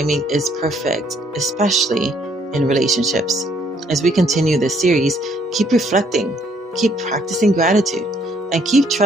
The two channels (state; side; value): normal; both; correlation 0.66